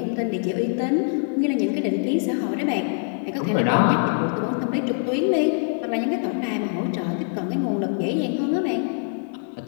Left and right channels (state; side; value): silent; right; 63 dB below the other